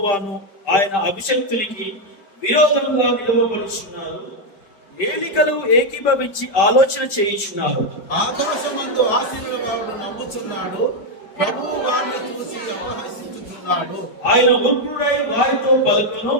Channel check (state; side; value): late; right; 5.1 ms